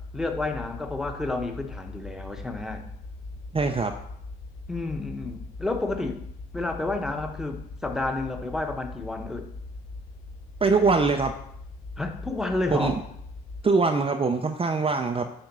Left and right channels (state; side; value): normal; both; correlation 0.63